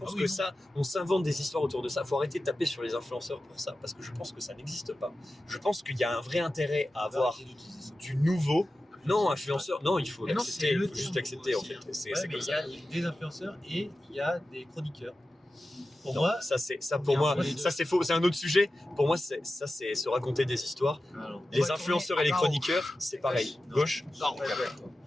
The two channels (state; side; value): normal; both; correlation 0.93